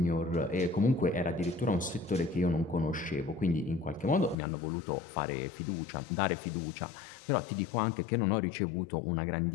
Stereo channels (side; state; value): right; drops out; at 4.4 s